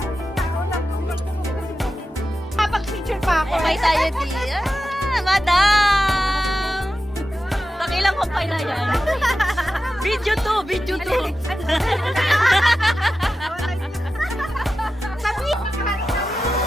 Kumpay tayo di. Madam! Pakilang kumpay na yan. Video 2.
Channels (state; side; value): normal; both; correlation 0.92